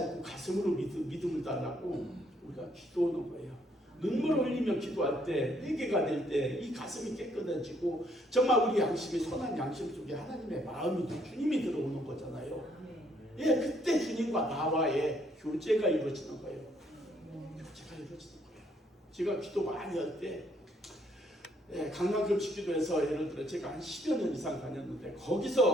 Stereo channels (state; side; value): normal; both; correlation 0.69